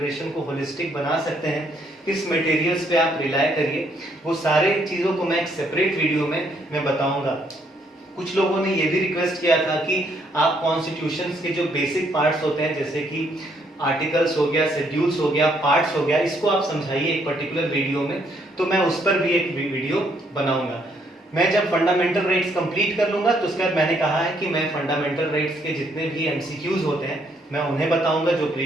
को होलिस्टिक बना सकते हैं, किस मटेरियल्स पे आप रिलाय करिए, वो सारे चीज़ों को मैं एक सेपरेट वीडियो में मैं बताऊंगा। कुछ लोगों ने ये भी रिक्वेस्ट किया था कि आप कॉन्स्टिट्यूशंस के जो बेसिक पार्ट्स होते हैं, जैसे कि आर्टिकल्स हो गया, शेड्यूल्स हो गया, पार्ट्स हो गया, इसको आप समझाइए एक पर्टिकुलर वीडियो में। तो मैं उस पर भी एक वीडियो बनाऊंगा। मैं जब फंडामेंटल राइट्स कंप्लीट कर लूंगा तो उसके बाद मैंने कहा है कि मैं फंडामेंटल राइट्स के जितने भी एमसीक्यूज होते हैं मैं उन्हें बताऊंगा, जो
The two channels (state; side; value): normal; both; correlation 0.70